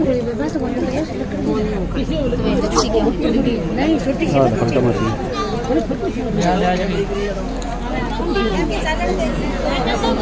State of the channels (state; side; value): identical; both; correlation 1.00